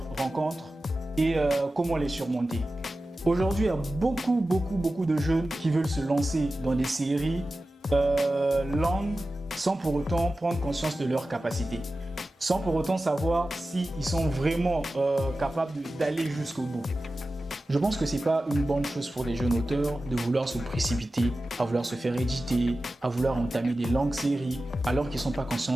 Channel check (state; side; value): normal; both; correlation 0.94